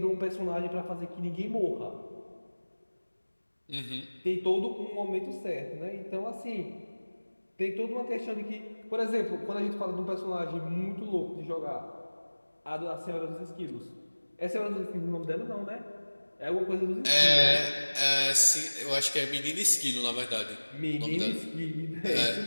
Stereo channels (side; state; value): both; inverted; correlation -1.00